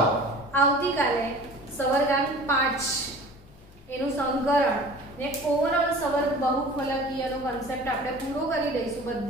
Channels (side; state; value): both; normal; correlation 0.43